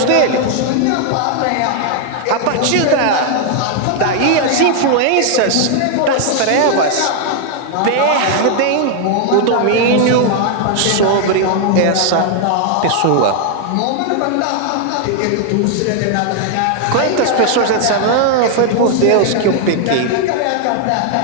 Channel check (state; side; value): different; both; correlation 0.00